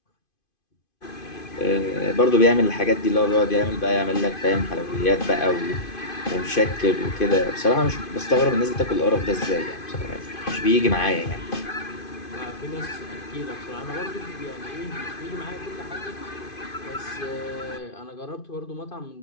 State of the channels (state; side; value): late; right; 2.5 ms